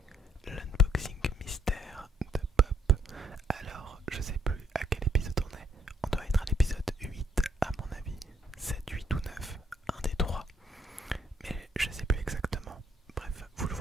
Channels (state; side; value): normal; both; correlation 0.70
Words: l'unboxing mystère de Pop. Alors, je sais plus à quel épisode on est. On doit être à l'épisode 8 à mon avis. 7, 8 ou 9, un des trois. Mais je sais plus exactement. Bref, vous le